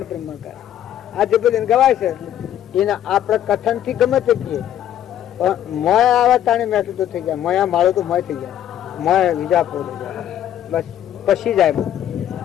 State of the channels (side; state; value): right; quieter; 11.1 dB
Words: બ્રહ્માકાર. આ જે બધું ગવાય છે એના આપણે કથન થી ગમે તે કહીએ પણ મોય આવા તાણે મેઠું તો થઈ જાય. મોયા માળો તો મોય થઈ જાય. મોય વિજા પોડે જાય બસ પછી જાય.